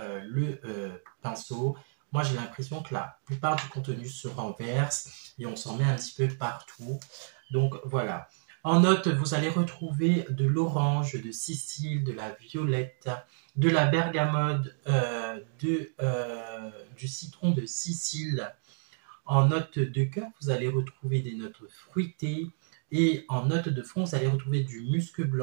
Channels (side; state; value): left; silent; digital silence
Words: le pinceau, moi j'ai l'impression que la plupart du contenu se renverse et on s'en met un petit peu partout. Donc voilà. En note, vous allez retrouver de l'orange, de Sicile, de la violette, de la bergamote, du citron de Sicile. En note de cœur, vous allez retrouver des notes fruitées. Et en note de fond, vous allez retrouver du musc